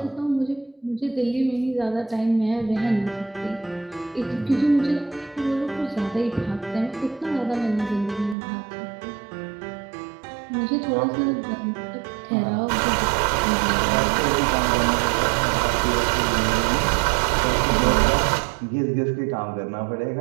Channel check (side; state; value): left; drops out; at 8.3 s